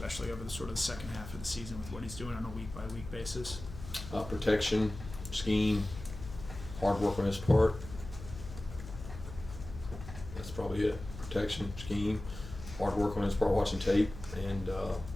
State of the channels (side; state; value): left; noise; hum, 12 dB below the sound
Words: over the sort of the second half of the season with what he's doing on a week-by-week basis? Protection, scheme, hard work on his part. That's probably it. Protection, scheme, hard work on his part, watching tape, and